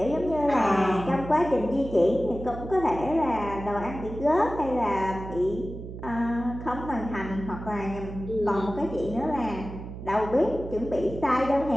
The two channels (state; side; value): noise; right; hum, 10 dB below the sound